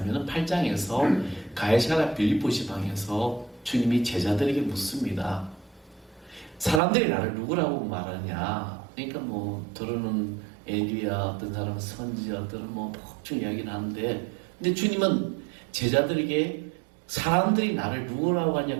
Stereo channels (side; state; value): left; drops out; at 6.8 s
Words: 8장에서 가이사랴 빌립보 지방에서 주님이 제자들에게 묻습니다. 사람들이 나를 누구라고 말하냐? 그러니까 들어는 엘리야, 어떤 사람은 선지자, 어떤 복중 이야기를 하는데, 근데 주님은 제자들에게 사람들이 나를 누구라고